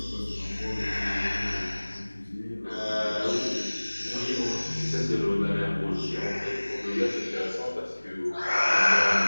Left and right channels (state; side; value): inverted; both; correlation -1.00